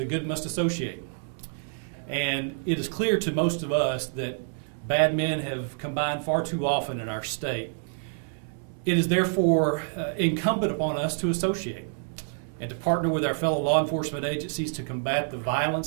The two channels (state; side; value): silent; left; 60 dB below the other